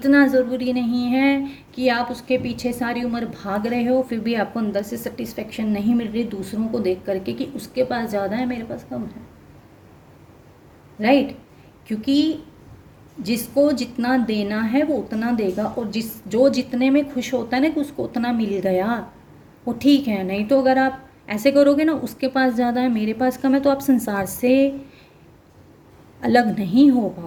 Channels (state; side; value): identical; both; correlation 1.00